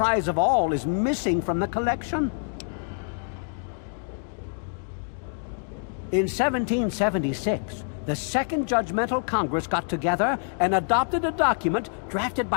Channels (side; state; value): right; silent; 58 dB below the other